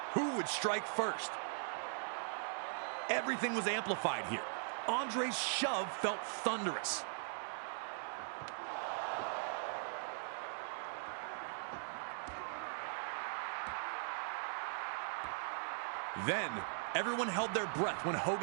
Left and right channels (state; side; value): silent; left; digital silence